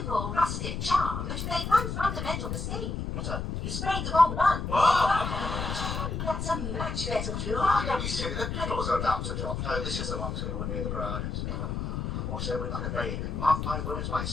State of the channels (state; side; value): noise; left; rumble, 3 dB below the sound